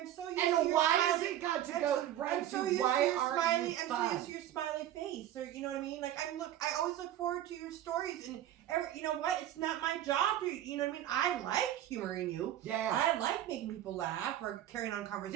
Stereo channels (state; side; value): quieter; left; 12.3 dB